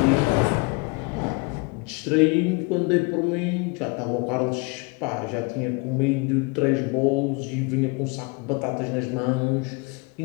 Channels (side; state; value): right; quieter; 28.2 dB